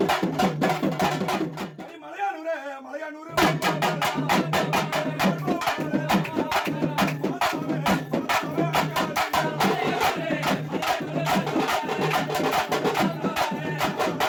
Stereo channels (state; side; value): identical; both; correlation 1.00